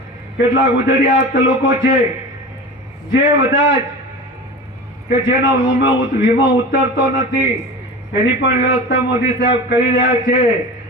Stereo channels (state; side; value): normal; both; correlation 0.32